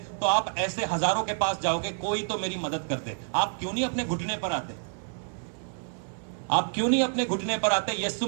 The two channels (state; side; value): silent; left; 59 dB below the other